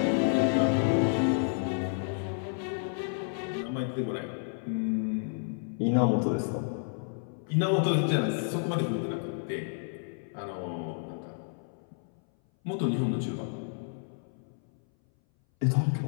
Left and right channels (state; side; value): silent; right; 57 dB below the other